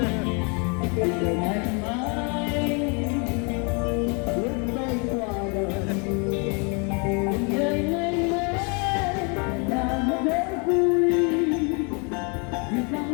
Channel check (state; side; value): quieter; right; 34.4 dB